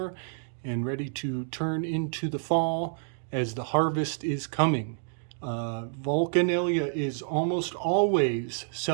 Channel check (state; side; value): silent; left; digital silence